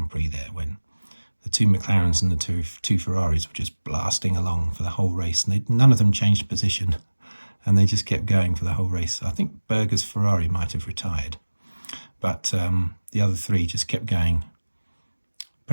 Prix there, when the two McLarens and the two Ferraris were just blasting along for the whole race, and none of them changed position, and they just kept going for the whole race. I think Berger's Ferrari might have retired, but the other three just kept going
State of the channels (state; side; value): inverted; both; correlation -1.00